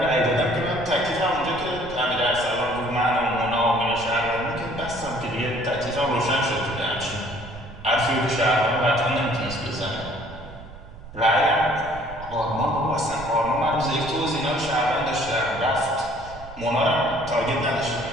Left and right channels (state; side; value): noise; right; rumble, 16 dB below the sound